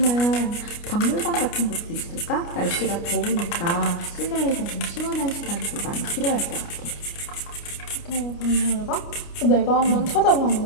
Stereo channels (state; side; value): late; right; 29 ms